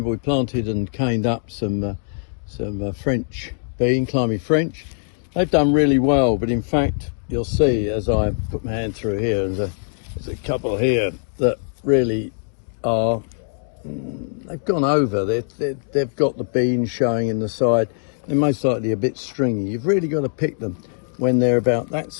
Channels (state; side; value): silent; right; 64 dB below the other